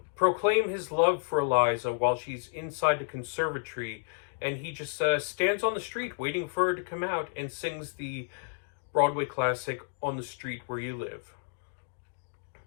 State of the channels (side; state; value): right; silent; digital silence